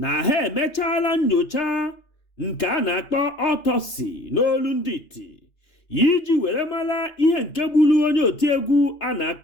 ha emechaala nnyocha nke a na-akpọ autopsy n'olu ndị iti iji were mara ihe nke gburu onye otiegwu a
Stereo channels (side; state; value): right; late; 2.9 ms